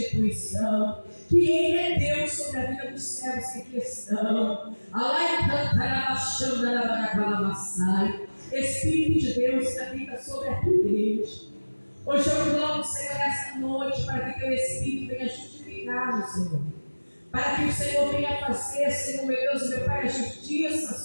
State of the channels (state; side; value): inverted; both; correlation -1.00